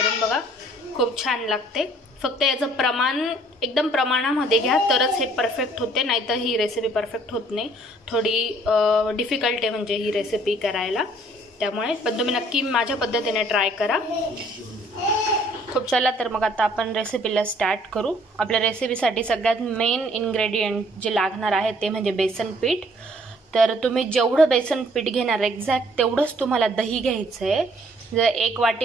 बघा, खूप छान लागते। फक्त याचं प्रमाण एकदम प्रमाणामध्ये घ्या तरच हे परफेक्ट होते, नाहीतर ही रेसिपी परफेक्ट होत नाही। थोडी डिफिकल्ट आहे म्हणजे ही रेसिपी करायला, त्यामुळे पण तुम्ही नक्की माझ्या पद्धतीने ट्राय करा। खूप चला तर मग आता आपण रेसिपीला स्टार्ट करू। आपल्या रेसिपीसाठी सगळ्यात मेन इन्ग्रेडियंट जे लागणार आहे ते म्हणजे बेसन पीठ। तर तुम्ही जेवढं बेसन पीठ घेणार एक्झॅक्ट तेवढंच तुम्हाला दही घ्यायचं आहे। जर 1 वाटी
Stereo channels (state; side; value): normal; both; correlation 0.60